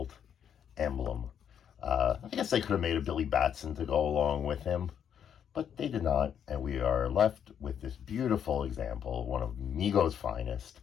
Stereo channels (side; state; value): right; quieter; 8.6 dB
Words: emblem. I guess they could have made a Billy Batson to go along with him, but they did not, and we are left with this beautiful example, one of Mego's finest,